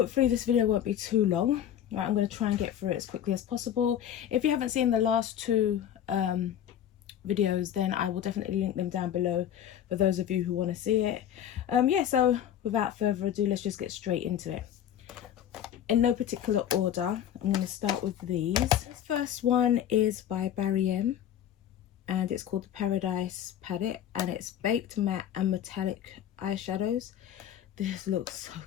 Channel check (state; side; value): quieter; right; 10.3 dB